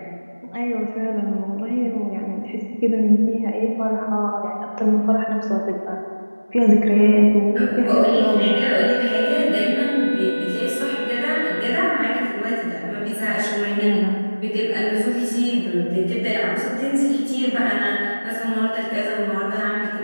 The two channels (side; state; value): both; inverted; correlation -1.00